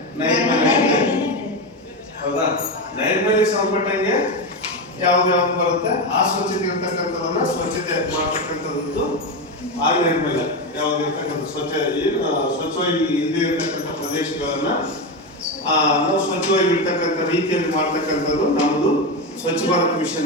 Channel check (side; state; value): both; normal; correlation 0.14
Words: ನೈರ್ಮಲ್ಯ ಬೇರೆ, ಹೌದಾ? ನೈರ್ಮಲ್ಯ ಸಂಬಂಧಪಟ್ಟಂಗೆ ಯಾವ್ದು ಬರುತ್ತೆ ಆ ಸ್ವಚ್ಛತೆ ಇರ್ತಕ್ಕಂಥದನ್ನ ಸ್ವಚ್ಛತೆ ಮಾಡ್ತಕ್ಕಂಥದ್ದು ಆ ನೈರ್ಮಲ್ಯ. ಯಾವ್ದು ಇರ್ತಕ್ಕಂಥ ಸ್ವಚ್ಛವಾಗಿ ಇಲ್ಲದೆ ಇರ್ತಕ್ಕಂಥ ಪ್ರದೇಶಗಳನ್ನ ನಾವು ಸ್ವಚ್ಛವಾಗಿ ಇರ್ತಕ್ಕಂಥ ರೀತಿಯಲ್ಲಿ ಮಾಡ್ತಕ್ಕಂಥದ್ದು ನಮ್ಮದು ಸ್ವಚ್ಛ ಭಾರತ್